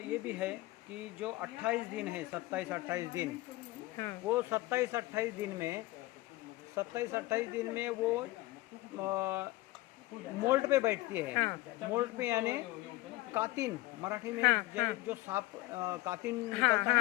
भी है कि जो 28 दिन है, 27-28 दिन, हाँ, वो 27-28 दिन में 27-28 दिन में वो मोल्ड पे बैठती है। हाँ। मोल्ड पे यानी कातिन, मराठी में हाँ, हाँ। जो सांप कातिन हाँ, निकलता है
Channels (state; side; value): quieter; right; 19.2 dB